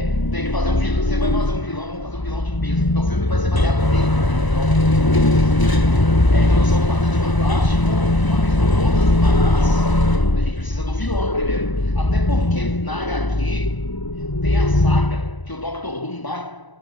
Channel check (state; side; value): late; right; 1.0 ms